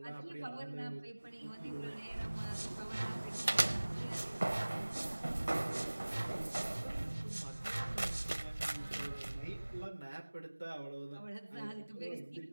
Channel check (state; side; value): inverted; both; correlation -1.00